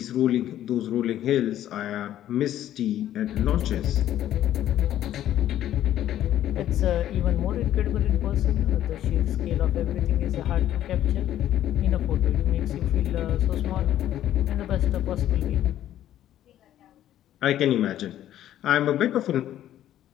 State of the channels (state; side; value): quieter; right; 12.1 dB